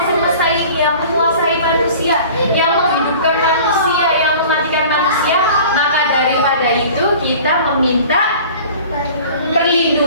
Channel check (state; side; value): inverted; both; correlation -0.44